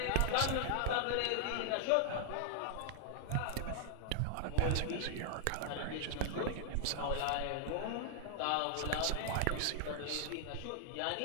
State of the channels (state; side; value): different; both; correlation 0.00